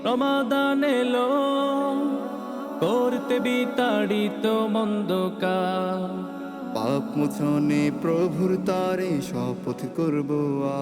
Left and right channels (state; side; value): identical; both; correlation 1.00